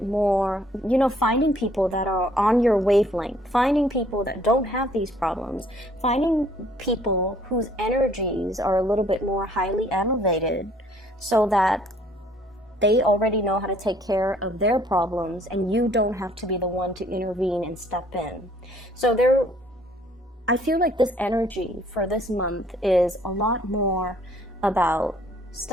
more, you know, finding people that are on your wavelength, finding people that don't have these problems, finding people whose energies are a little bit more highly elevated, so that they already know how to take care of their problems and you don't have to be the one to intervene and step in. So I feel like this energy for this month is a lot more about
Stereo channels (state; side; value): normal; both; correlation 0.60